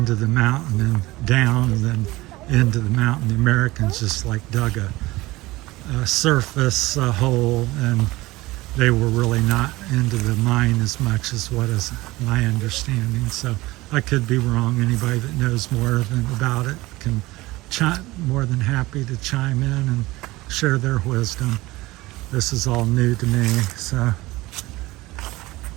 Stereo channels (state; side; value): quieter; left; 19.6 dB